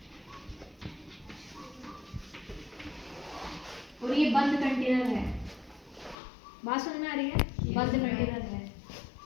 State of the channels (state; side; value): drops out; right; at 6.2 s